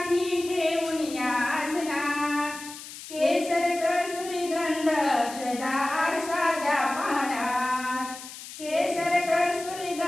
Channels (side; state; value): left; noise; hiss, 13 dB below the sound